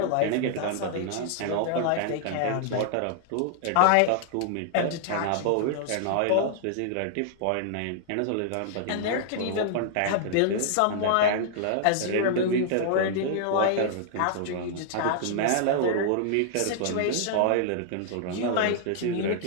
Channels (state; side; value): different; both; correlation -0.01